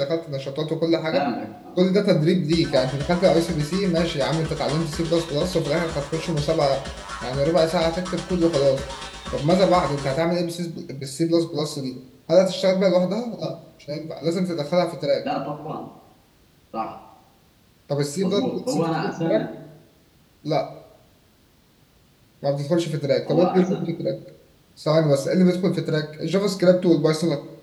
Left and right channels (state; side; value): identical; both; correlation 1.00